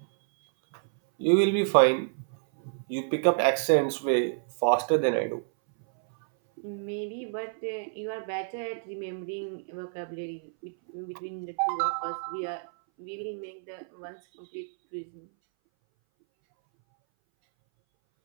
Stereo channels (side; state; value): left; silent; 59 dB below the other